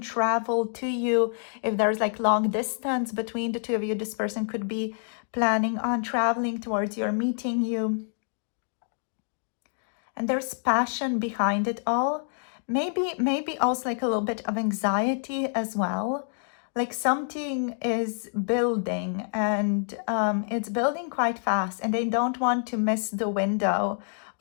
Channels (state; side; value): silent; right; digital silence